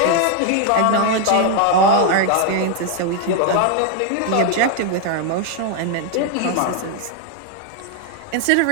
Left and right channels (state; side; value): different; both; correlation 0.00